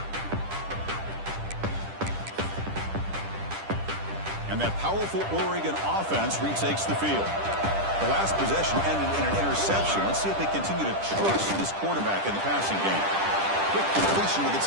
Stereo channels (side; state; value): left; late; 10 ms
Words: And that powerful Oregon offense retakes the field. The last possession ended in an interception. Let's see if they continue to trust this quarterback in the passing game. Quick completion to the